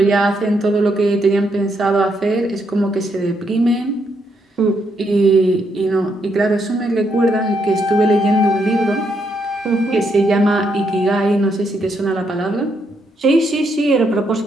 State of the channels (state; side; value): normal; both; correlation 0.77